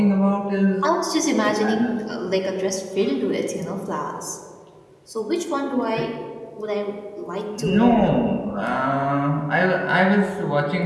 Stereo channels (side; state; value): both; identical; correlation 1.00